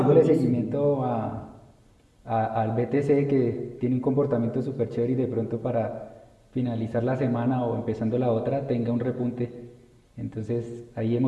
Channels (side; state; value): both; identical; correlation 1.00